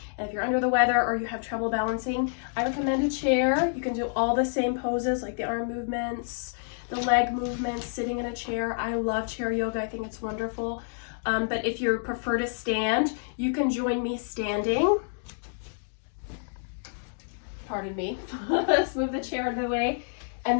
And if you're under the weather or you have trouble balancing, I recommend a chair. You can do all the same poses like the arm movements, the leg movements, sitting in a chair. I love chair yoga. I think it's wonderful. But if you prefer to stand, you can join me standing. Pardon me. Let's move the chair out of the way.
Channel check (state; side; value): silent; right; digital silence